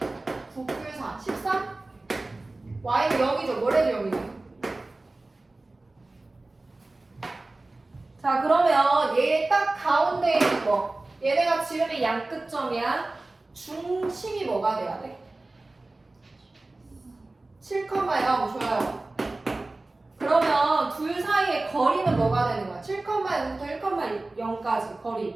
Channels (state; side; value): quieter; left; 3.0 dB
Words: 9 풀 4, 13? y는 0이죠. 뭐래도 0이죠. 자, 그러면 얘 딱 가운데 있는 거. 얘네가 지름의 양끝점이야. 중심이 뭐가 돼야 돼? 7,0 좋아요. 그러면 둘 사이의 거리는 뭐가 되는 거야? 7,0부터 1,0까지